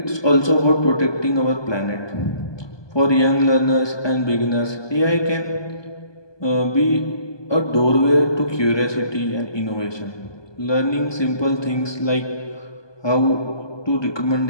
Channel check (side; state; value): right; late; 1.2 ms